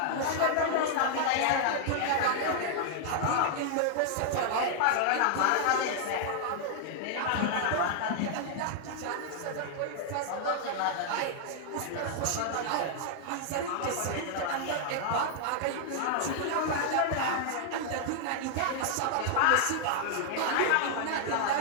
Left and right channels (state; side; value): different; both; correlation -0.01